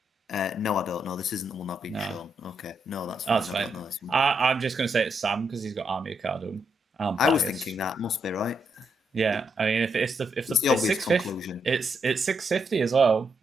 No, I don't know. This isn't the one I've been shown. Okay, no, that's fine. I'm just going to say it's Sam because he's got Army of Cardum. I was thinking that must be right. Yeah, I mean, if it's 650, it's 650 as well.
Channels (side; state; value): both; normal; correlation 0.79